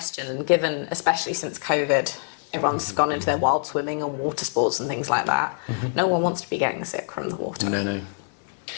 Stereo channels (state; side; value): silent; right; digital silence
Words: and given, especially since COVID, everyone's gone into their wild swimming and water sports and things like that. No one wants to be getting sick from the water. No.